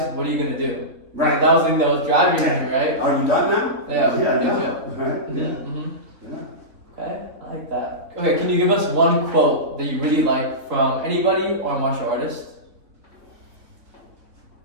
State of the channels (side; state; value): left; late; 3.3 ms